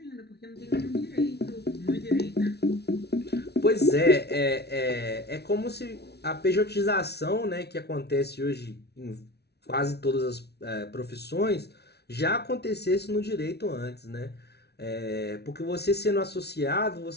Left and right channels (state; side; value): late; right; 0.48 ms